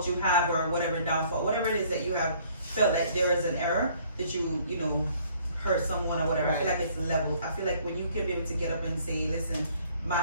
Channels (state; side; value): inverted; both; correlation -0.60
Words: you have, or whatever downfall, whatever it is that you have felt like there is an error that you hurt someone or whatever. I feel Right. like it's levels. I feel like when you can be able to get up and say, listen, my